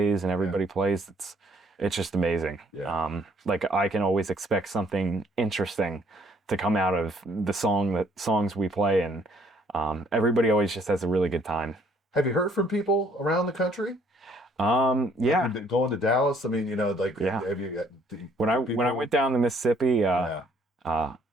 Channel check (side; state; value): both; normal; correlation 0.63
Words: and everybody plays, it's just amazing. Yeah. Like I can always expect something interesting to come out of the songs we play, and everybody always just has a really good time. Have you heard from people around the country? Yeah. Going to Dallas. I mean, have you got when I went down to Mississippi, there